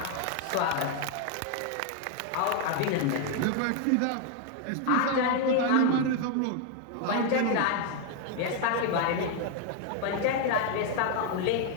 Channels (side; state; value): both; different; correlation 0.01